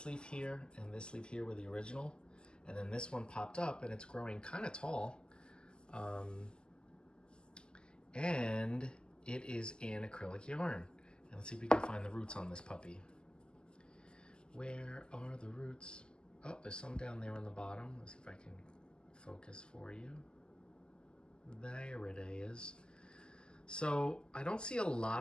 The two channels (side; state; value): right; late; 0.048 ms